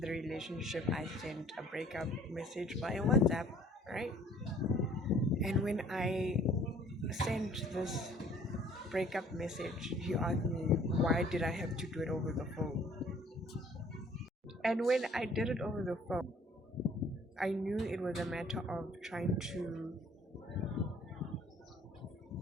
the relationship, I sent a breakup message via WhatsApp, right? And when I sent this breakup message, he asked me, why did I have to do it over the phone? And when I did it over the phone, I knew it was a matter of trying to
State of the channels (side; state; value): both; normal; correlation 0.56